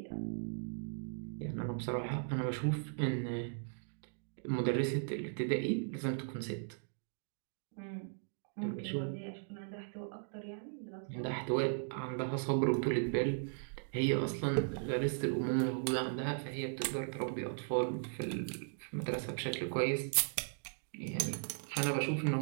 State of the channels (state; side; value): silent; left; digital silence